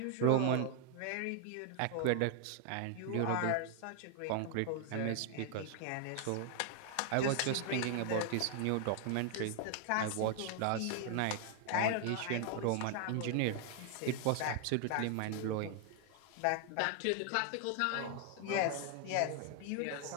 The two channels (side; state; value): both; different; correlation 0.00